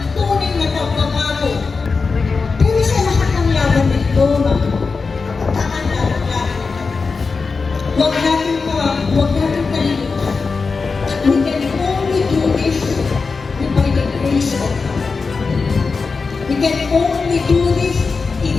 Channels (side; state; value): right; quieter; 4.6 dB